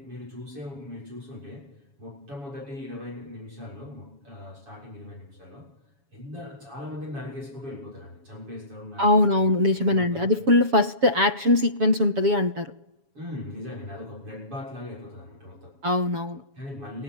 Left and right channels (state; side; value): late; left; 7.2 ms